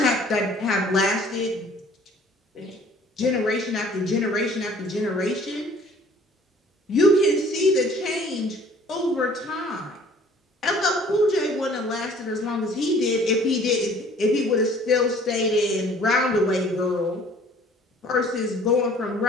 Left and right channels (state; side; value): normal; both; correlation 0.53